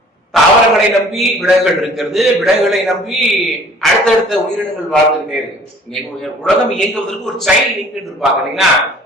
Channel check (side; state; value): both; normal; correlation 0.52